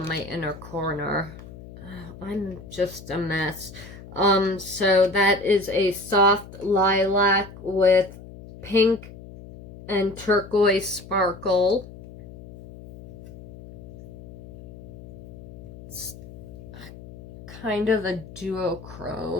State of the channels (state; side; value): noise; left; hum, 16 dB below the sound